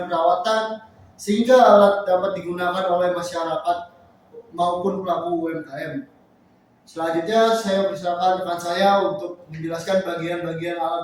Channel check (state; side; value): identical; both; correlation 1.00